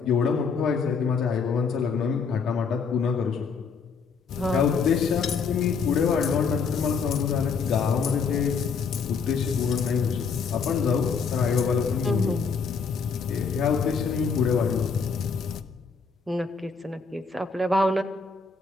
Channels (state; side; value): quieter; right; 5.4 dB